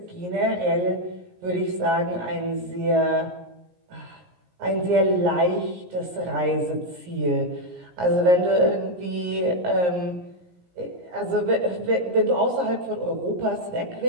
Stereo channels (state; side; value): late; left; 17 ms